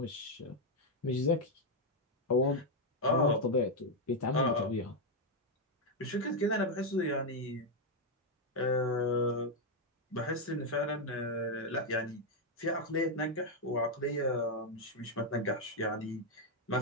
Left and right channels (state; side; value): normal; both; correlation 0.01